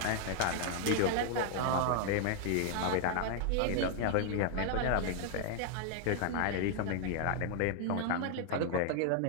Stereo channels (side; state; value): both; different; correlation 0.00